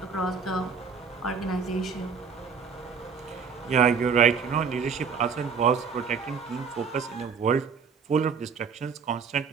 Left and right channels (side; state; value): left; quieter; 5.9 dB